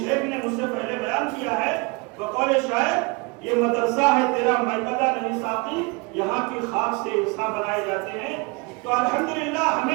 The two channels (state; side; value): quieter; left; 27.7 dB